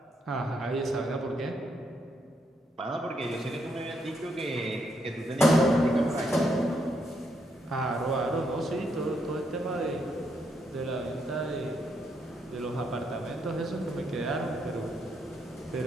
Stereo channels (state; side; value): normal; both; correlation 0.77